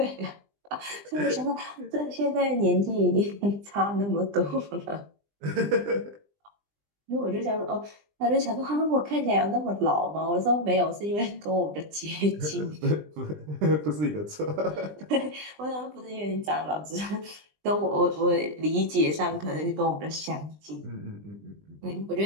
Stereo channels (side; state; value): left; late; 20 ms